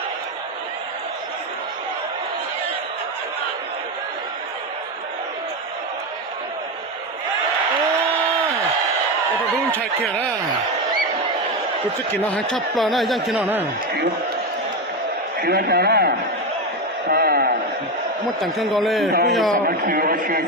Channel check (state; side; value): normal; both; correlation 0.14